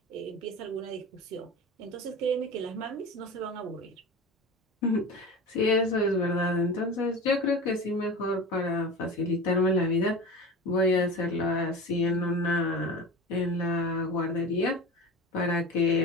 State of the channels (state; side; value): normal; both; correlation 0.31